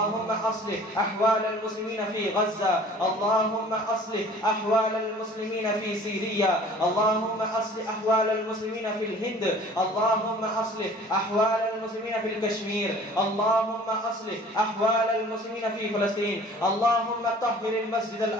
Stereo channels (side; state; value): both; normal; correlation 0.49